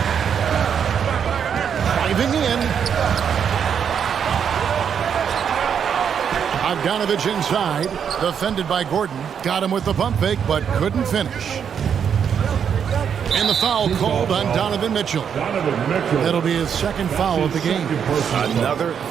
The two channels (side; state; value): left; quieter; 7.7 dB